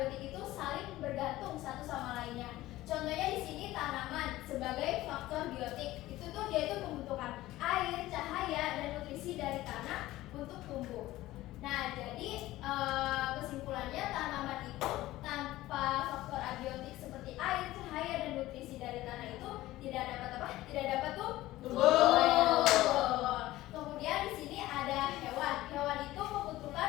itu saling bergantung satu sama lainnya. Contohnya di sini tanaman sebagai faktor biotik itu tuh dia itu membutuhkan air, cahaya, dan nutrisi dari tanah untuk tumbuh. Nah jadi kesimpulannya tanaman itu tanpa faktor abiotik seperti air, cahaya, dan nutrisi dari tanah itu tidak dapat apa? Tidak dapat tumbuh. Kemudian di sini ada hewan. Hewan itu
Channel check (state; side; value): quieter; right; 16.6 dB